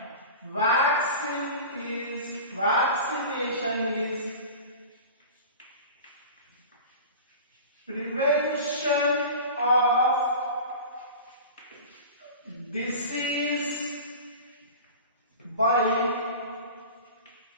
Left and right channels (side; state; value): both; inverted; correlation -0.35